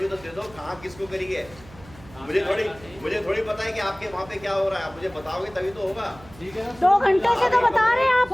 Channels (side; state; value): right; noise; hum, 21 dB below the sound